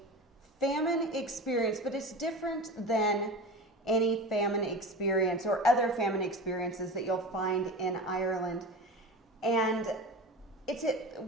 famine experience, but it's different than any famine experience or other famine experiences that you'll find in Ireland. And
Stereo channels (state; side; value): normal; both; correlation 0.30